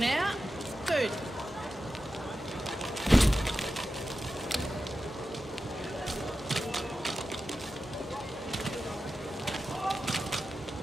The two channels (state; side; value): normal; both; correlation 0.92